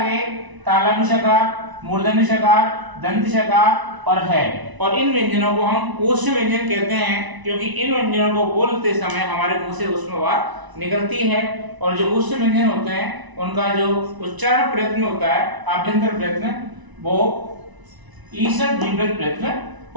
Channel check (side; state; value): left; late; 1.0 ms